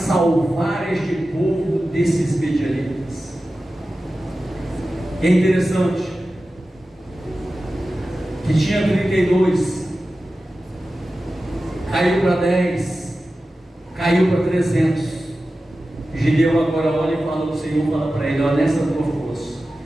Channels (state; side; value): normal; both; correlation 0.94